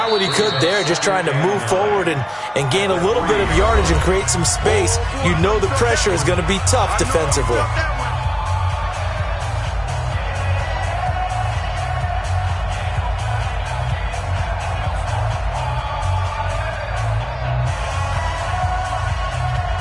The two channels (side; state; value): both; identical; correlation 1.00